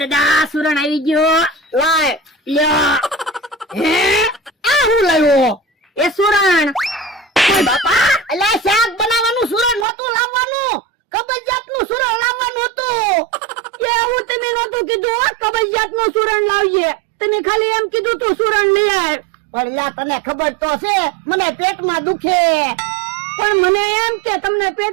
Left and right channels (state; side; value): drops out; left; at 9.9 s